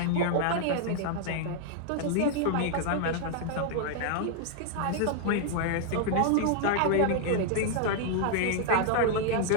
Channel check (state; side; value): different; both; correlation 0.00